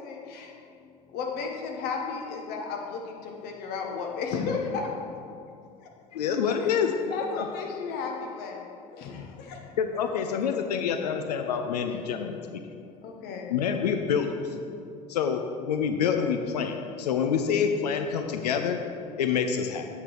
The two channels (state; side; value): quieter; right; 6.3 dB